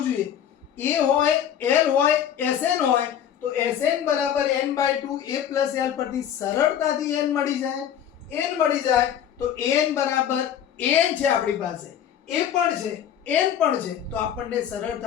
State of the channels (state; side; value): quieter; right; 9.5 dB